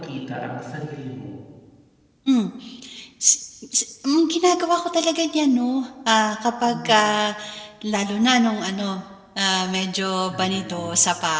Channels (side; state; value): both; identical; correlation 1.00